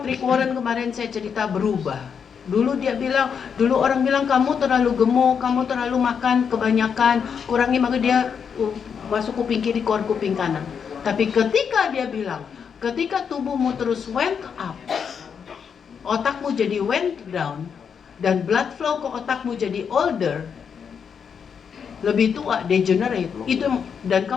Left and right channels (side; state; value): right; quieter; 6.9 dB